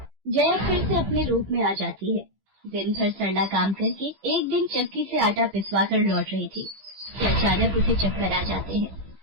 जया फिर से अपने रूप में आ जाती है। दिन भर सरला काम करके एक दिन चक्की से आटा पिसवा कर लौट रही थी कि अचानक उसे चक्कर आ जाते हैं।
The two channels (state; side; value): late; left; 15 ms